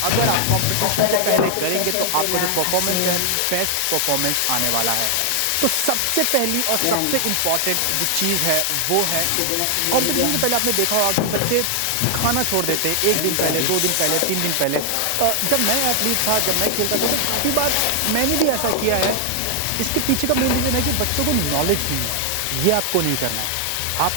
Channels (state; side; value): different; both; correlation 0.00